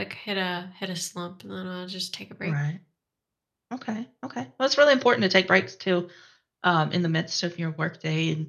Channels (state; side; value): identical; both; correlation 1.00